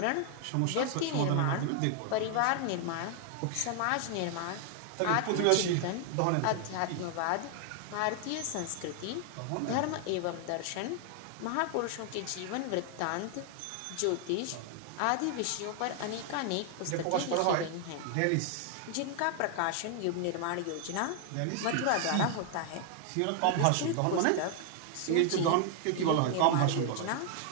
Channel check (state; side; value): different; both; correlation 0.00